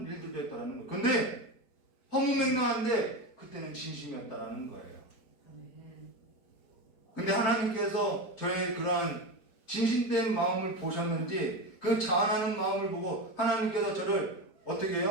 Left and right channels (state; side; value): late; right; 4.5 ms